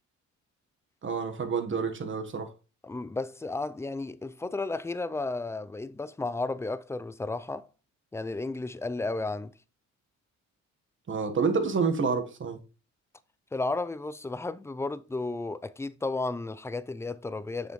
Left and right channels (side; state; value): both; normal; correlation 0.52